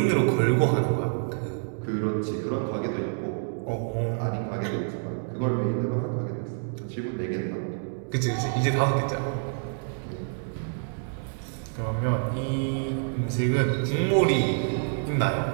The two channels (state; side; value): silent; left; digital silence